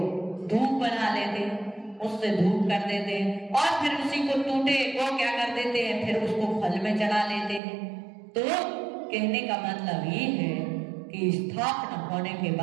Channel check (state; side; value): drops out; left; at 7.6 s